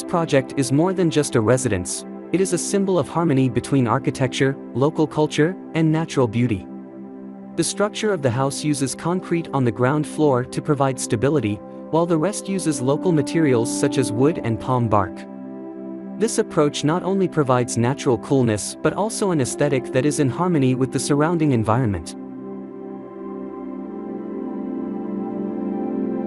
project is more than just a residence, it is a symbol of harmony between architecture, local culture, and natural beauty. The structure of the house uses concrete on the ground floor to provide stability, while the rest uses local materials such as wood and palm bark. This approach not only provides natural coolness but also an aesthetic that is in harmony with the surrounding environment.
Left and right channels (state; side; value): identical; both; correlation 1.00